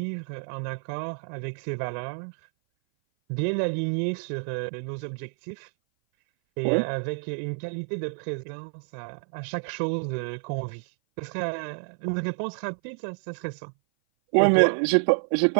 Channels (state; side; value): silent; left; 56 dB below the other